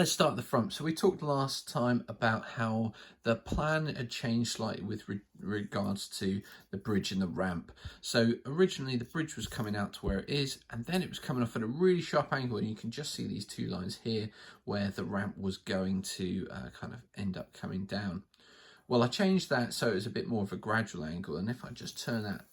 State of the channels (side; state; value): both; identical; correlation 1.00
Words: start at the front. So we talked last time about how the plan had changed slightly with regards to the bridge and the ramp. So originally the bridge was coming out to where it is, and then it was coming off at a really sharp angle, and you can just see these two lines here where the ramp was going to kind of end up coming down. Well, I changed that so it was a bit more of a gradual angle, and if I just turn that,